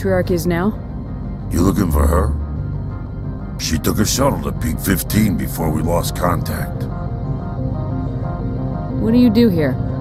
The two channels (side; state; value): both; identical; correlation 1.00